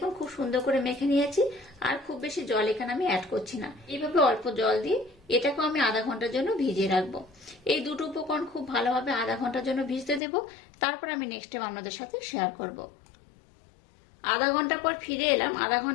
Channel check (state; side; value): drops out; right; at 10.2 s